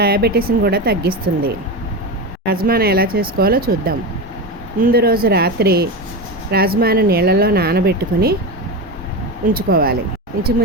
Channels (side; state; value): both; normal; correlation 0.20